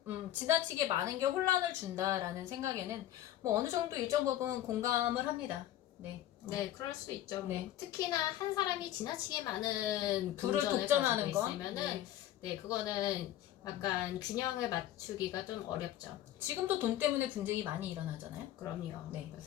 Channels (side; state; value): right; quieter; 12.8 dB